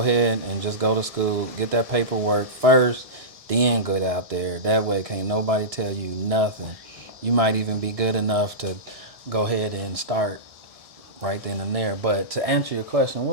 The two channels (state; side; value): late; left; 1.6 ms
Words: and just go to school, get that paperwork first, then get out there. That way can't nobody tell you nothing. You might even be good enough to go ahead and start right then and there. But to answer your question,